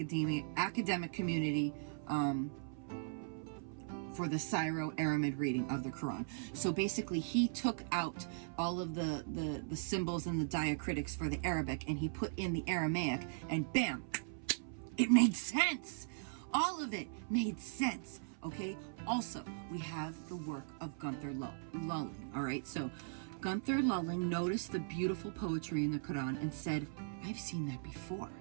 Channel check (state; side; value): silent; left; 52 dB below the other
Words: academic community for the Syro-Aramid reading of the Quran. So basically, he took out all of the symbols and the diacritics for the Arabic, and he put in the Aramaic, and bam, it made sense. All of it made sense. Okay. Also, we have the work of Gunther Lulling. All right. So Gunther Lulling noticed the beautiful poetry in the Quran and said, "I've seen that before."